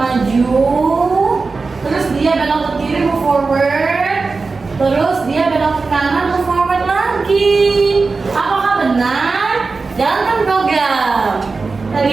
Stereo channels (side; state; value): left; quieter; 4.2 dB